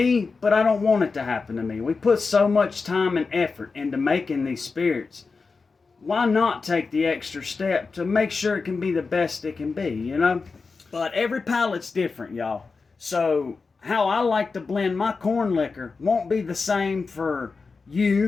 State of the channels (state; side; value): quieter; right; 4.5 dB